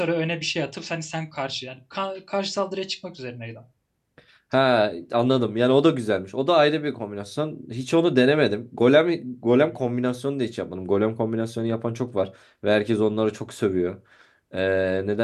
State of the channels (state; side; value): identical; both; correlation 1.00